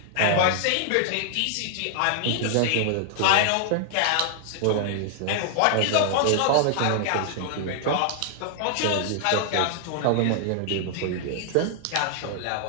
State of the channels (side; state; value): both; different; correlation -0.01